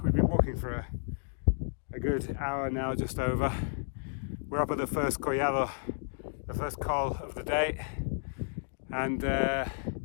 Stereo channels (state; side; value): silent; right; digital silence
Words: we've been walking for a good hour now, just over. We're up at the first collado, the first col of the day, and